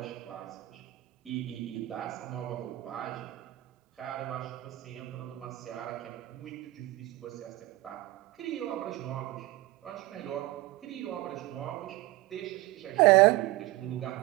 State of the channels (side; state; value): left; quieter; 18.1 dB